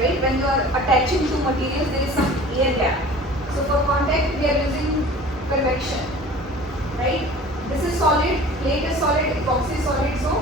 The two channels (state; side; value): normal; both; correlation 0.43